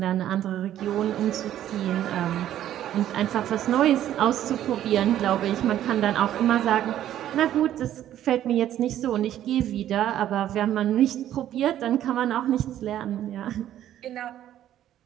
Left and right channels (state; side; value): quieter; left; 11.8 dB